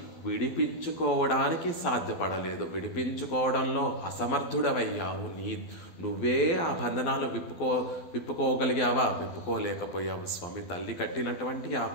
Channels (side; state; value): right; late; 12 ms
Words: విడిపించుకోవడానికి సాధ్యపడలేదు, విడిపించుకోవడంలో అసమర్థుడవయ్యావు. నువ్వే ఆ బంధనాలు విప్పుకోగలిగావా? విప్పుకోలేకపోయావు స్వామి. తల్లి కట్టినటువంటి ఆ